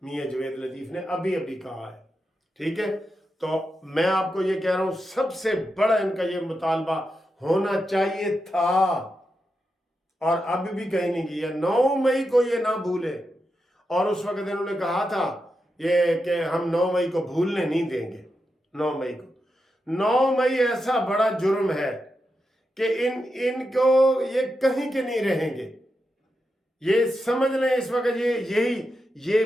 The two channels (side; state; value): both; normal; correlation 0.87